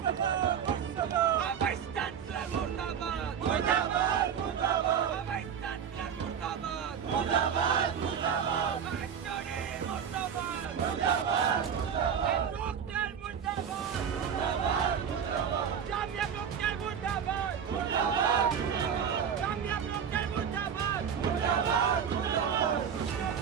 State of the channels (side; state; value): left; quieter; 7.8 dB